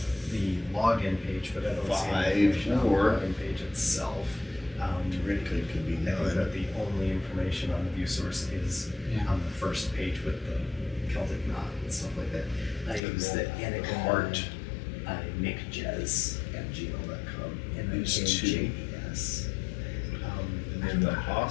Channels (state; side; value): drops out; right; at 13.0 s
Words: the login page, but I don't see 5, any information on the 4. login page itself. theoretically it could be I think 9. that the only information on the view source is Yeah. on the first page with the Celtic knot and stuff like that. I And use the then Anakin heart. nickjez@gmail.com and then Is 2. JES. And then the